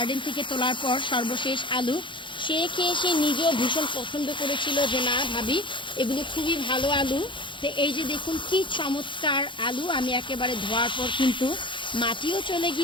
থেকে তোলার পর, সর্বশেষ আলু। সে খেয়ে সে নিজেও ভীষণ পছন্দ করেছিল যে না ভাবি, এগুলো খুবই ভালো আলু। তো এই যে দেখুন কি চমৎকার আলু, আমি একেবারে ধোয়ার পর কিন্তু মাটিও চলে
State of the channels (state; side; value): late; right; 0.24 ms